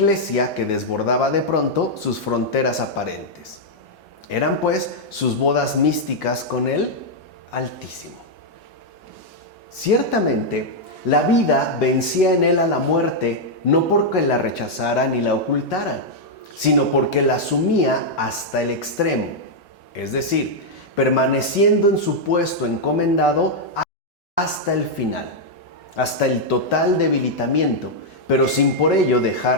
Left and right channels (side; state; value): both; normal; correlation -0.03